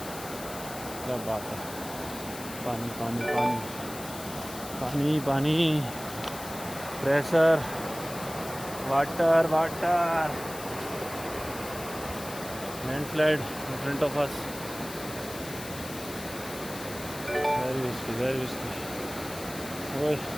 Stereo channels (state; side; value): noise; left; hiss, 12 dB below the sound